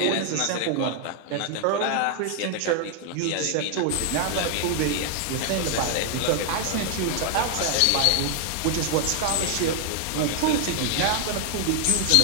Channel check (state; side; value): different; both; correlation 0.00